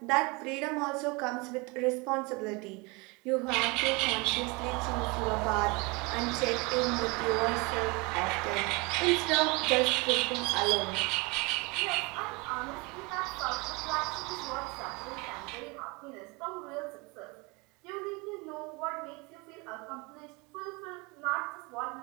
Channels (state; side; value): quieter; left; 27.3 dB